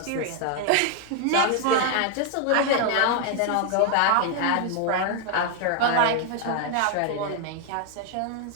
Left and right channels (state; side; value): different; both; correlation 0.00